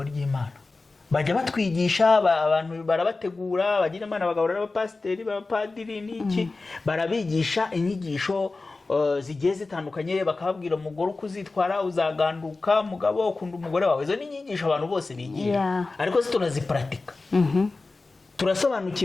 ry'Imana. Bajya batwigisha, abantu barabategura, bagira Imana bagahura n'abapasiteri, abapadiri n'iki, barabigisha inyigisho zigiye zitandukanye, bakababwira umugore uko uzitwara, uzaganduka, mugabo ukunda umugore wawe. Izo ni inyigisho abantu bose bigira, ariko se turaziparatika.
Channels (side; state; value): right; quieter; 3.6 dB